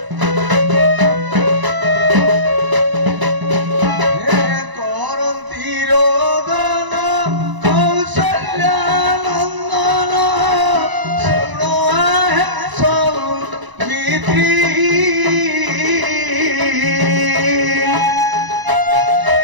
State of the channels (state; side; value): late; left; 1.0 ms